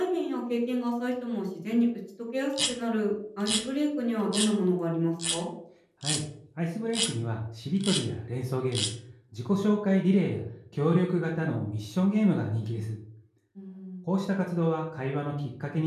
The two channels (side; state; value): both; identical; correlation 1.00